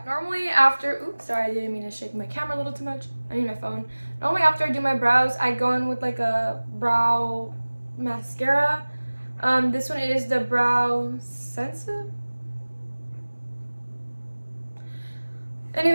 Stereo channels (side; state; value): both; inverted; correlation -1.00